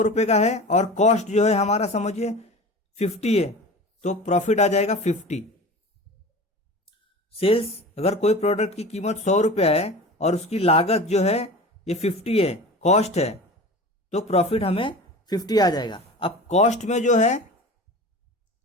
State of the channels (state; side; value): normal; both; correlation 0.35